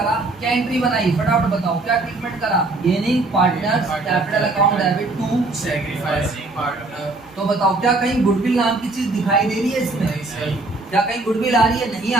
क्या एंट्री बनाई फटाफट बताओ, क्या ट्रीटमेंट करा? Gaining partners, capital account debit to sacrificing partner. तो बताओ क्या कहीं गुडविल नाम की चीज दिखाई दे रही है इसमें? नहीं सर। क्या कहीं गुडविल आ रही है? नहीं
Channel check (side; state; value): left; quieter; 3.2 dB